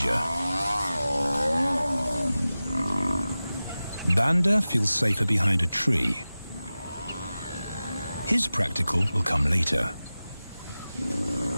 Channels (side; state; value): both; inverted; correlation -0.96